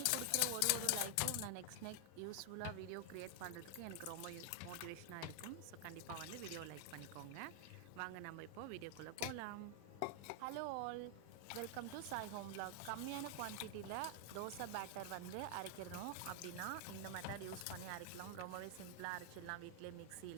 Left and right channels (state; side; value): different; both; correlation 0.00